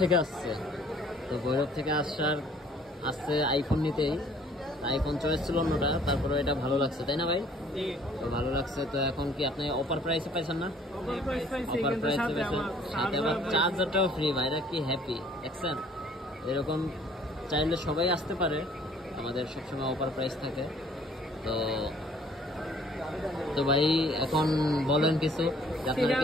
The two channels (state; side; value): normal; both; correlation 0.57